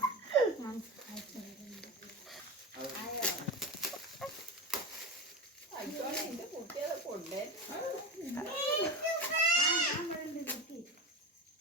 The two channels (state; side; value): normal; both; correlation 0.23